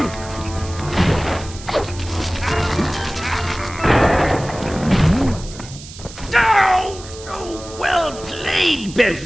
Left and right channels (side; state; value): right; noise; hiss, 16 dB below the sound